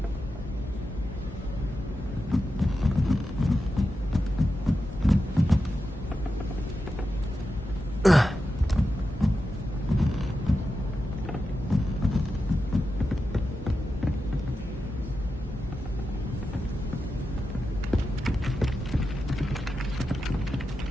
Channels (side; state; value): both; normal; correlation 0.90